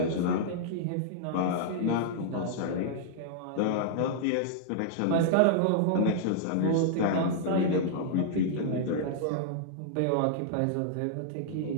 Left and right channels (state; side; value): different; both; correlation -0.01